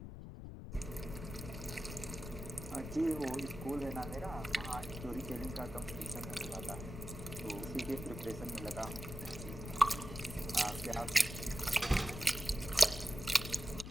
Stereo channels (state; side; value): noise; left; rumble, 9 dB below the sound